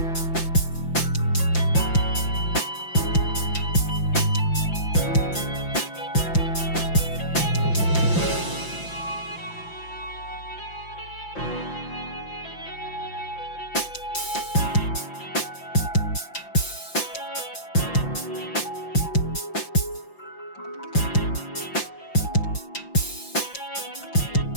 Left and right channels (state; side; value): late; right; 5.8 ms